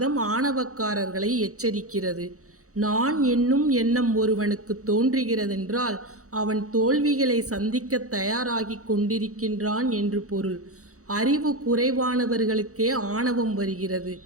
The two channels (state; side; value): late; left; 0.65 ms